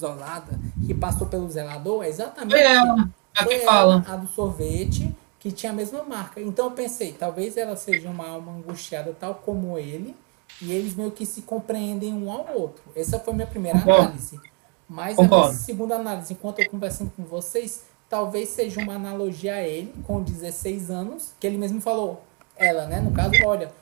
que passou pelo zelador, é exatamente a do sorvete, que tinha a mesma marca. Então eu pensei, talvez ela seja uma alma angustiada tal como ele, e eles meio que se compreendem um ao outro. Essa foi a minha primeira análise. Mas a minha segunda análise, enquanto eu conversando com vocês, talvez seja uma analogia a ele, com 16 anos, que ele mesmo falou, ela, né, no caso, olha,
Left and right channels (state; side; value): quieter; left; 33.6 dB